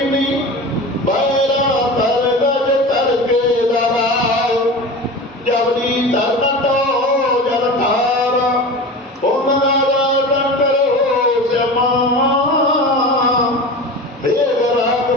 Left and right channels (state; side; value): normal; both; correlation 0.31